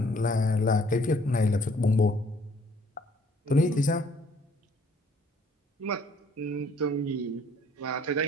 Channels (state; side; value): normal; both; correlation 0.61